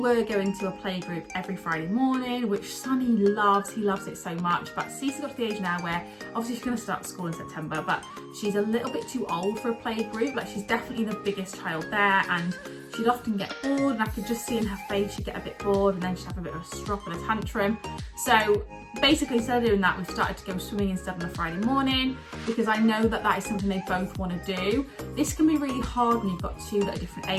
going to a playgroup every Friday morning, which Sonny loves. He loves it so much. But Cece got to the age now where obviously she's going to start school in September, but she's a little bit too old for a playgroup. Like, she's definitely the biggest child there, and she'd often get bored, and I could just see in her face she'd get a bit bored, and then she'd have a bit of a strop and a tantrum. So basically, instead of doing that, we've started to go swimming instead on a Friday morning, because I know that is something they both want to do. This can be really hard when you've got 2 that are different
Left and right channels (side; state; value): both; identical; correlation 1.00